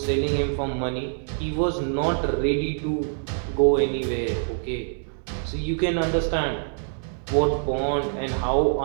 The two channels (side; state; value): left; silent; digital silence